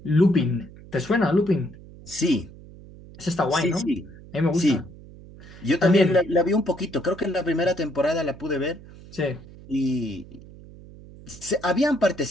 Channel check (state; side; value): noise; right; hum, 19 dB below the sound